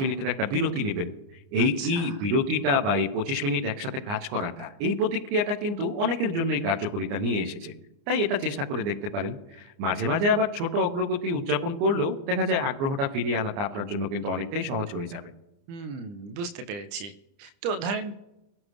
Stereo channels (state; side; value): late; left; 30 ms